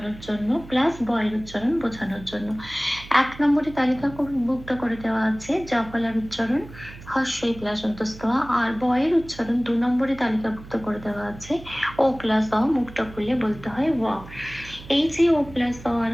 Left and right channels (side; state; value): right; noise; hum, 17 dB below the sound